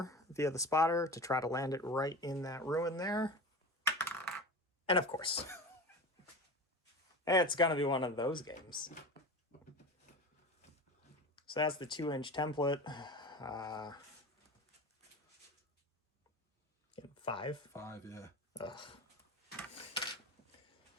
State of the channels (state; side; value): normal; both; correlation 0.31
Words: via the spotter to try to land it right in that ruin there. And of course, it's gonna be one of those games. So that's the 2-inch template. 5? 5, yeah. Ugh.